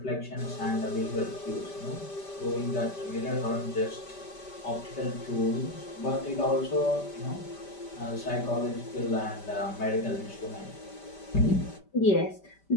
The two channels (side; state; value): right; late; 5.1 ms